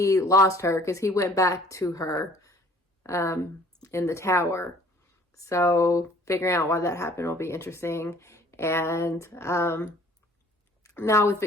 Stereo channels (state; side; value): normal; both; correlation 0.55